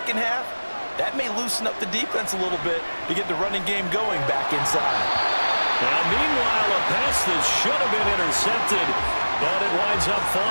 half, that may loosen up the defense a little bit to get the running game going back inside. Now, meanwhile, a pass that should have been intercepted, but it winds up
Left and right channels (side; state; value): both; inverted; correlation -1.00